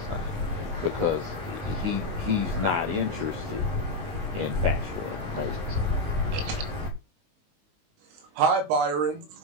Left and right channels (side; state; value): left; late; 19 ms